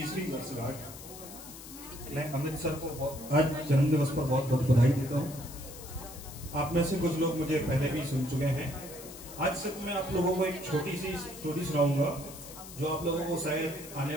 वर्षगांठ। मैं अमित सर को आज जन्मदिवस पर बहुत बहुत बधाई देता हूं। आप में से कुछ लोग मुझे पहले भी सुन चुके हैं। आज सिर्फ मैं आप लोगों को एक छोटी सी स्टोरी सुनाऊंगा जो आप लोगों को शायद आने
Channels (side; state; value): left; noise; hiss, 14 dB below the sound